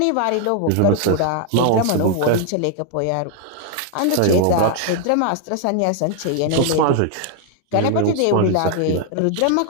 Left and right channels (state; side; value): different; both; correlation 0.00